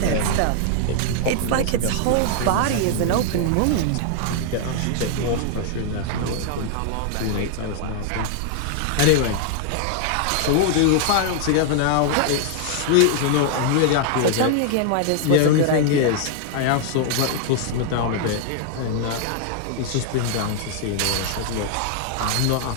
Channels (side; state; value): both; different; correlation 0.00